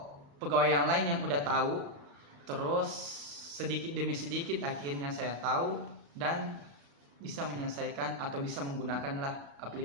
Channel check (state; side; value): late; left; 35 ms